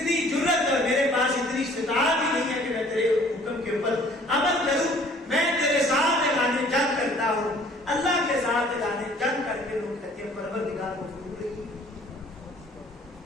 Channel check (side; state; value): both; normal; correlation 0.55